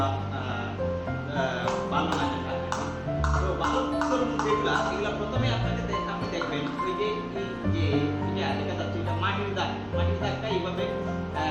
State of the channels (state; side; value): identical; both; correlation 1.00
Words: ভালো না। তো ভালো তরমুজ এগুলা প্রথমে আপনি দেখবেন ওই যে এটা দেখা যাচ্ছে এটা মাটির দাগটা এইভাবে